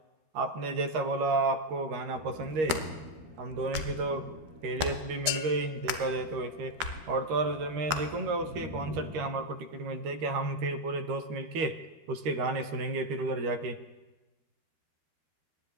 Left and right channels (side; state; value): left; late; 13 ms